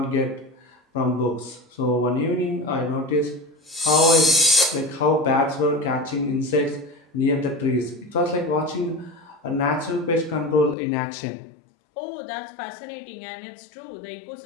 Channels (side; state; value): right; drops out; at 10.8 s